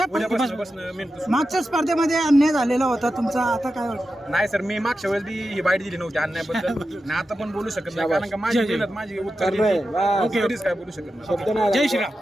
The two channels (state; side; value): normal; both; correlation 0.91